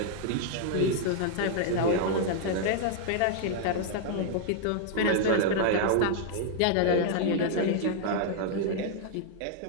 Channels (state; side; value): different; both; correlation -0.01